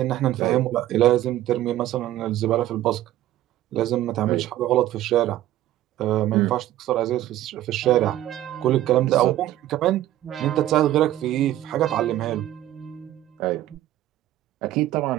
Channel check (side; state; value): left; quieter; 13.7 dB